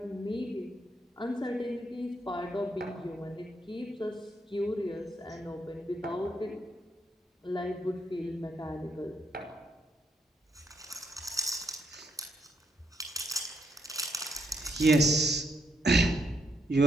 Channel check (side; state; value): both; normal; correlation 0.77